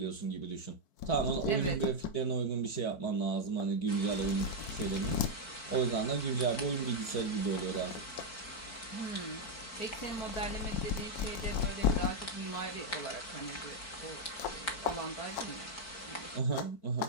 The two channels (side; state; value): right; late; 4.5 ms